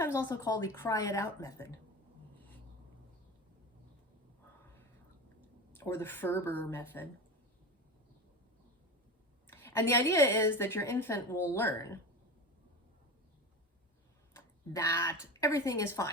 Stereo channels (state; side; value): normal; both; correlation 0.27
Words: also called the cry it out method, or the Ferber method. And the idea is that your infant will learn that everything is